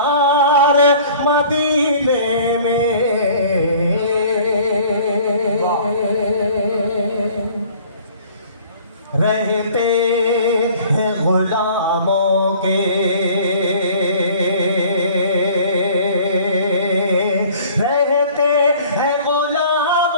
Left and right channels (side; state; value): both; inverted; correlation -0.51